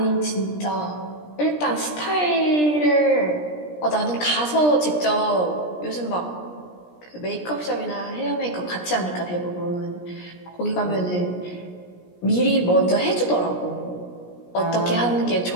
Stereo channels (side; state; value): right; late; 17 ms